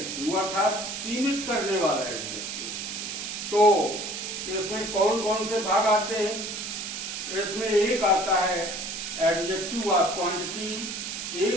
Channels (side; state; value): right; noise; hiss, 6 dB below the sound